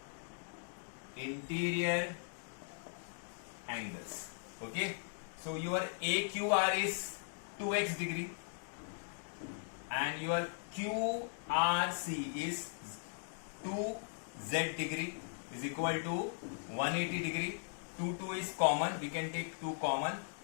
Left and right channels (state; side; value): silent; right; digital silence